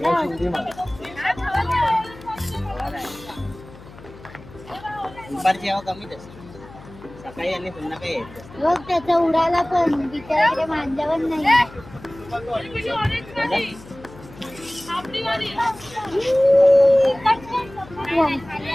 या शिंडी मार. दुपारची हवा कमीच असते, सकाळी आणि संध्याकाळी येत. बघ, त्याचा उडाला पण बिचाराकडे मांजावर नाही.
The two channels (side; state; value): left; noise; hum, 19 dB below the sound